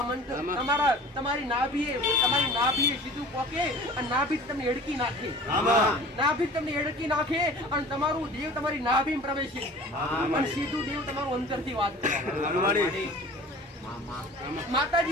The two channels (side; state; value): both; normal; correlation 0.43